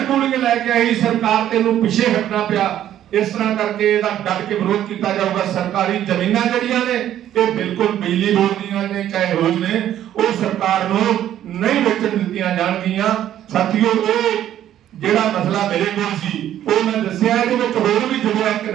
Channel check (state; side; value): quieter; left; 11.5 dB